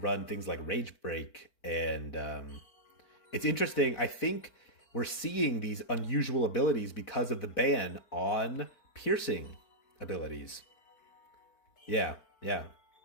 run things like Rage Break. And it's interesting. I think we're seeing these unusual abilities because of the ban on piercing abilities. Yeah.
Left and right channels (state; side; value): late; right; 4.5 ms